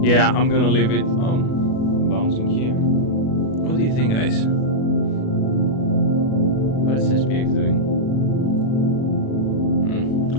Yeah, I'm gonna leave it. Oh, bouncing here. What do you think, guys? What is SPX doing?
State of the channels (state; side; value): late; right; 37 ms